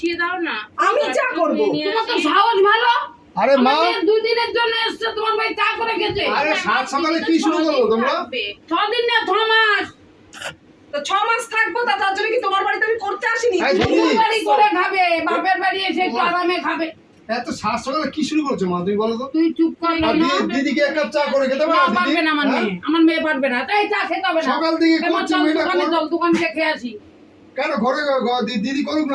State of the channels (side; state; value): both; identical; correlation 1.00